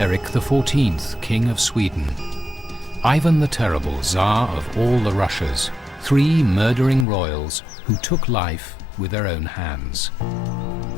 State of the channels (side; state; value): right; drops out; at 7.1 s